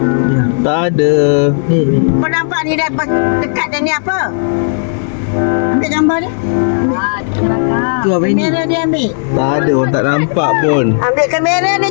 Tak ada. Kau nampak ni dah dekat dan ni apa? Ambil gambar dia. Tu apa ini? Kamera dia ambil. Tak ada, orang tak nampak pun. Ambil kamera ni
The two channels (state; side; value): silent; right; digital silence